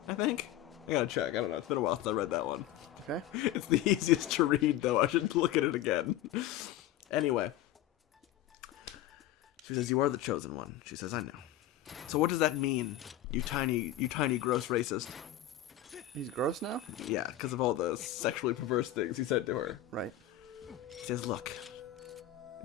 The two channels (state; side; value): quieter; right; 12.3 dB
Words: I think. I gotta check. I don't know. It's been a while since I read that one. Okay. It's the easiest to read, though. I should look at it again. Anyway. She says, you are the chosen one. She says, I know. So what does that mean, you tiny gross racist? He's gross now? Yeah, because of all the sexually perverse things he said to her. Right. He says, look,